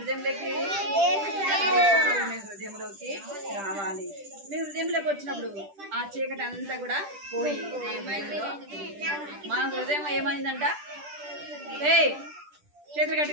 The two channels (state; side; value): late; left; 10 ms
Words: మీ హృదయంలోకి రావాలి. మీ హృదయంలోకి వచ్చినప్పుడు ఆ చీకటి అంతా కూడా పోయి మన హృదయం ఏమైందంట? చేతులు